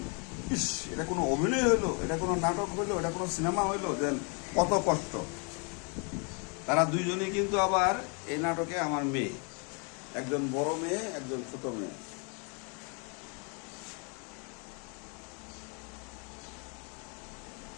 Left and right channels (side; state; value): right; quieter; 35.7 dB